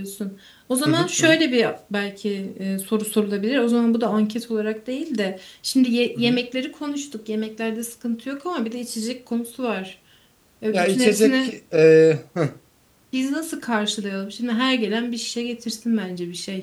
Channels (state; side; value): identical; both; correlation 1.00